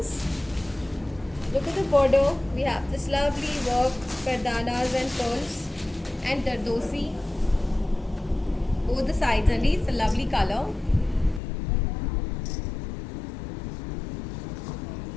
Look at the border. We have this lovely work, gardanas and pearls and dardosi. Both the sides only. It's a lovely color.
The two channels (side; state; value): right; drops out; at 11.4 s